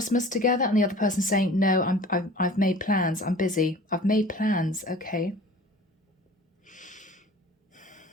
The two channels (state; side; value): normal; both; correlation 0.44